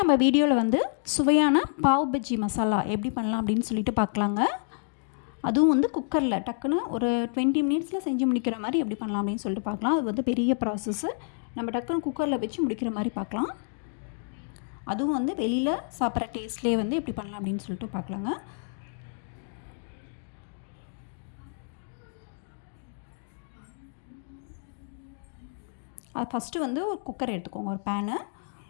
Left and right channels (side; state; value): right; silent; 59 dB below the other